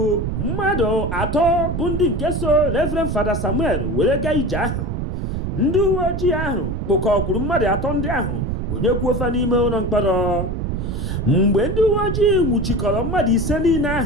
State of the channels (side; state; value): right; noise; rumble, 2 dB below the sound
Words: mmadụ 3 bụ ndị nke so Reverend Fada Samuel were gaa ije ahụ. Ndị uwe ojii ahụ kpụkọkwuru mmadụ 3 ndị ahụ gbonyekwuo fa n'ime ụlọ mkpọrọ. Mgbe ndị uwe ojii nwụchikọrọ mmadụ 5 niile